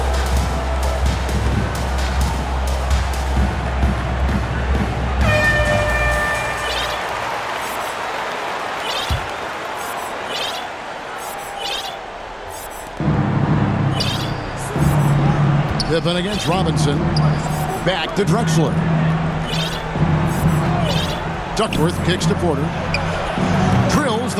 Pippen against Robinson. Back to Drexler. Duckworth kicks to Porter. Drills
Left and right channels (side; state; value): both; identical; correlation 1.00